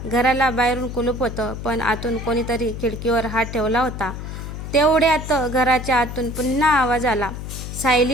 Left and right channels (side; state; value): left; noise; hum, 8 dB below the sound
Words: घराला बाहेरून कुलूप होतं, पण आतून कोणीतरी खिडकीवर हात ठेवला होता. तेवढ्यात घराच्या आतून पुन्हा आवाज आला,